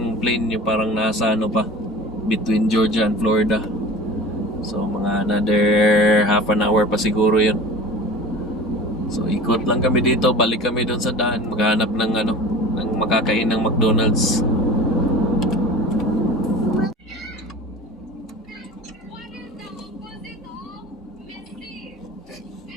plane yung parang nasa pa, between Georgia and Florida. So mga another half an hour pa siguro yun. So ikot lang kami dito, balik kami doon sa daan, maghanap ng ng makakain ng McDonald's.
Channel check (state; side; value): normal; both; correlation 0.39